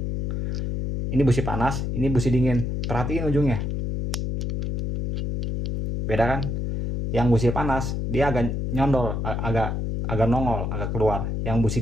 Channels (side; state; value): left; noise; hum, 2 dB below the sound